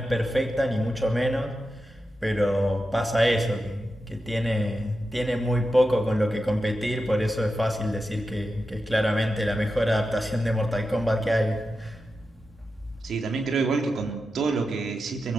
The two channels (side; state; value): both; normal; correlation 0.90